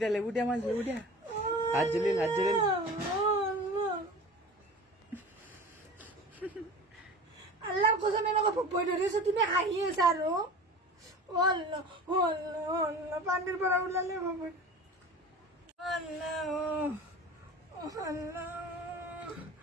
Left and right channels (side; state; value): both; normal; correlation 0.37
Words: দিয়া মাছ, লেবু দিয়া। হাত জ্বলিল। আল্লাহ কসম এনেকুৱা ভয় ধৰিছে, তুমি হাঁহি আছা আৰু পানীৰ পৰা ওলালে ভয়।